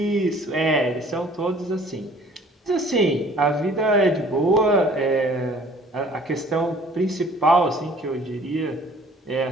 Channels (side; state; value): both; normal; correlation 0.53